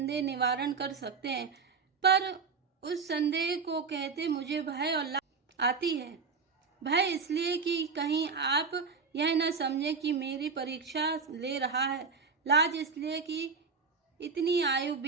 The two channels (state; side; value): quieter; left; 5.1 dB